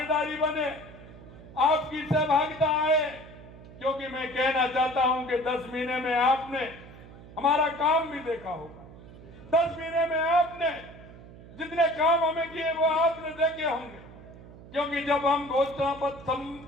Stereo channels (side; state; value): right; noise; hum, 18 dB below the sound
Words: बने, आपकी सहभागिता आए, क्योंकि मैं कहना चाहता हूं कि 10 महीने में आपने हमारा काम भी देखा होगा। 10 महीने में आपने जितने काम हमें किए वो आपने देखे होंगे, क्योंकि जब हम घोषणा पत्र